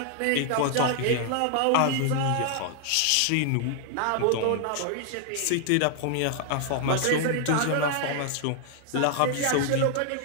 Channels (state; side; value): different; both; correlation 0.00